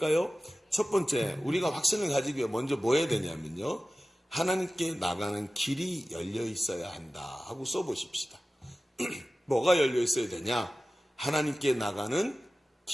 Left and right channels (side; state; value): both; normal; correlation 0.95